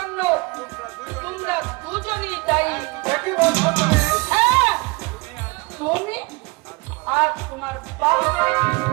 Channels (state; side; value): quieter; left; 26.3 dB